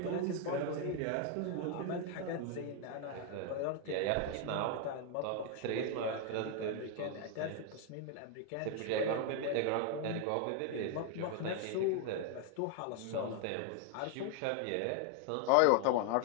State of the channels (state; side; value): different; both; correlation 0.00